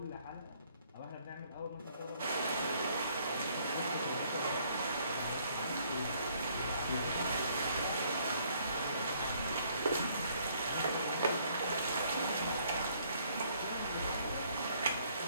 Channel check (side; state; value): both; inverted; correlation -0.65